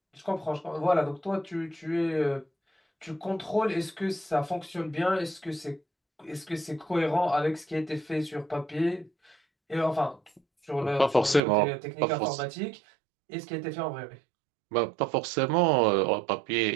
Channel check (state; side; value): drops out; left; at 11.4 s